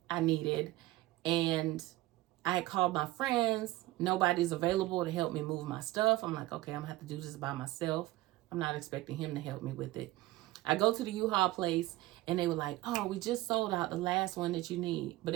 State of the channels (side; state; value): left; quieter; 18.0 dB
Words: I needed. And I had called my friends. Nobody's available to help me move my stuff. I'm like, okay, I'm going to have to do this by myself. I'm not expecting him to help me with it. I go to the U-Haul place and they were like, oh, we just sold out the last one that you need. But